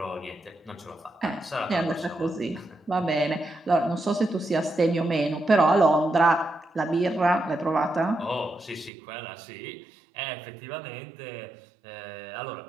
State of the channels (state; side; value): drops out; left; at 8.9 s